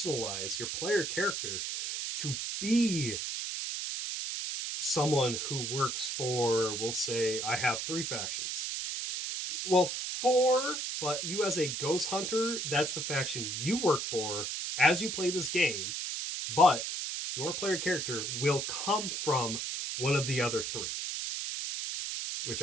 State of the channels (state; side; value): noise; right; hiss, 3 dB below the sound